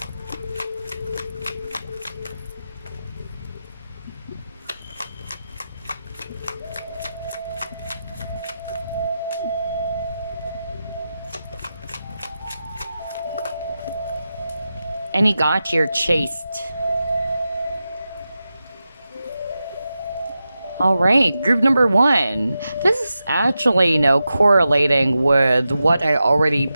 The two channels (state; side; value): inverted; both; correlation -0.91